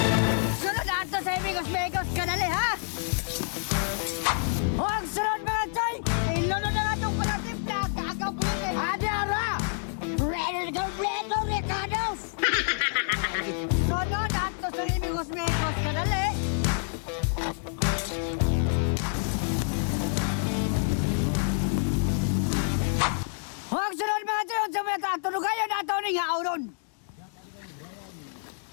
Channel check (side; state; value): right; silent; digital silence